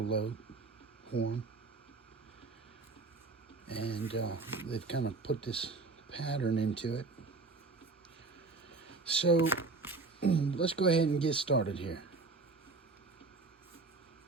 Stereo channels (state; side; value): quieter; left; 3.8 dB